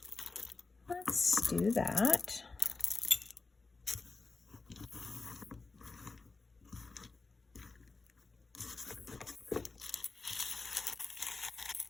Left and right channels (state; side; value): quieter; right; 3.9 dB